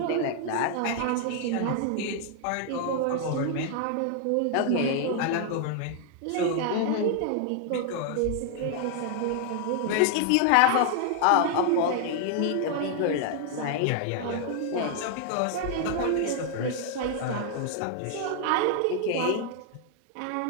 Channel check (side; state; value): both; different; correlation 0.00